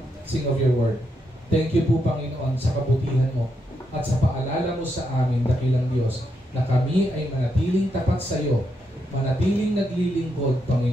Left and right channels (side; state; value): both; normal; correlation 0.81